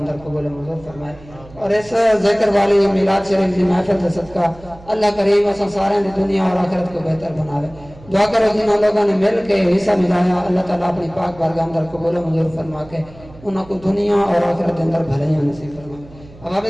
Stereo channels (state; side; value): noise; right; hum, 21 dB below the sound